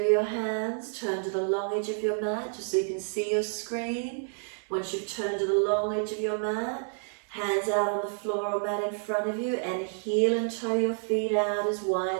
your hands. Turn to the long edge of your mat just so you can see your screen. Once you've turned to the long edge of your mat, hands out on the floor or mat in front of you, and heel and toe your feet out as wide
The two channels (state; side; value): silent; left; 58 dB below the other